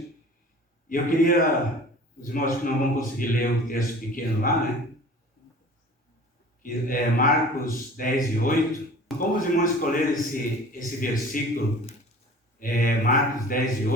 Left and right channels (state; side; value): normal; both; correlation 0.44